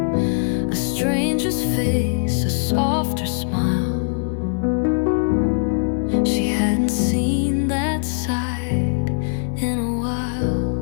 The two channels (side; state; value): right; silent; digital silence